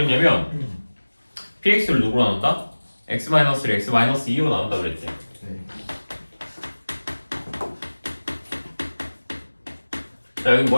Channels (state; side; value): inverted; both; correlation -1.00